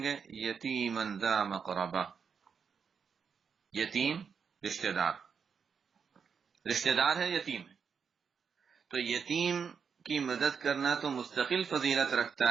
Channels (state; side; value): quieter; left; 6.3 dB